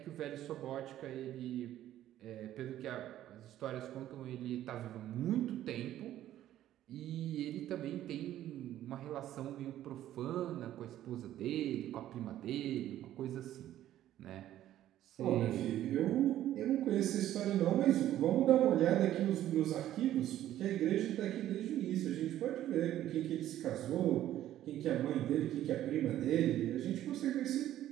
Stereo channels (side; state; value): left; quieter; 12.7 dB